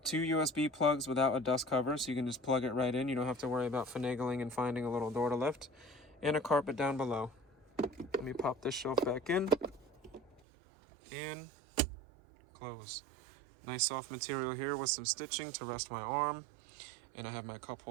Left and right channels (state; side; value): drops out; left; at 10.4 s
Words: 2 USB plugs without a dust cover, so you can just plug it right in. You don't have to worry about finagling and finding a little door to lift. And a carpet down below. Let me pop this shelf back in. And close. Nice soft material here with some stitching to rest my arm. And I have my cup